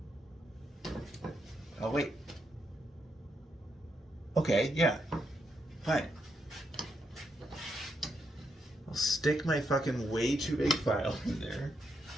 Oh, wait. Okay, yeah. Fine. I'll stick my fucking way too big file in there.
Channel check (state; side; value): normal; both; correlation 0.80